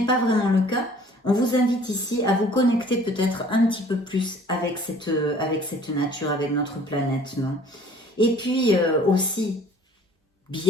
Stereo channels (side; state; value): both; normal; correlation 0.53